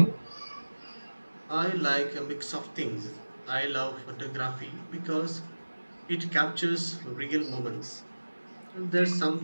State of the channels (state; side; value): inverted; both; correlation -1.00